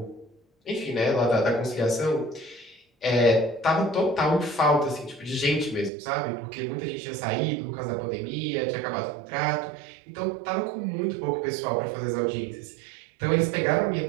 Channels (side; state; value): left; drops out; at 5.9 s